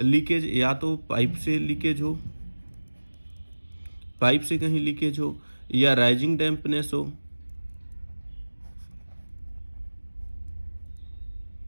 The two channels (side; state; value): both; inverted; correlation -1.00